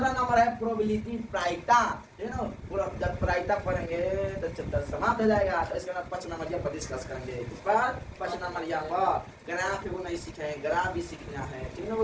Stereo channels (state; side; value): identical; both; correlation 1.00